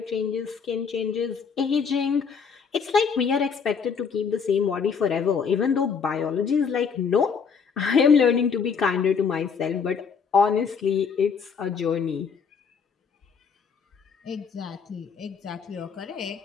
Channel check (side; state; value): right; quieter; 6.1 dB